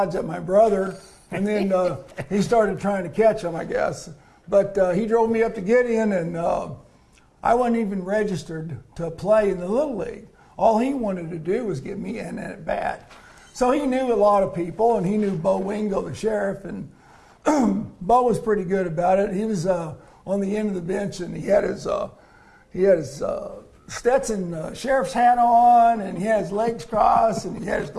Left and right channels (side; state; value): both; identical; correlation 1.00